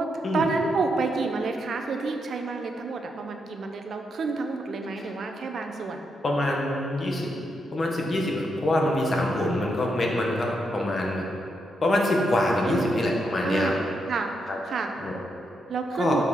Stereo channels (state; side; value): normal; both; correlation 0.81